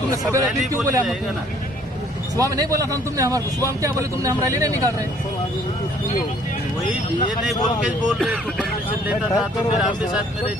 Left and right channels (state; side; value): normal; both; correlation 0.60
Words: तुमने सवेरे क्यों बोले? सुबह में नहीं बोला था तुमने हमारे? सुबह में क्या बोले तुमने? हम रैली नहीं निकाल रहे। वही ये नहीं बोल के बोल रहे तो परमिशन लेता था तो फिर आपके साथ में